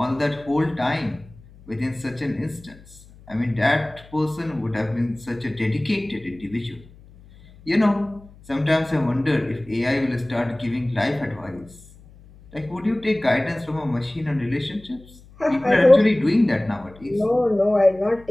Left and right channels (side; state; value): left; noise; hum, 23 dB below the sound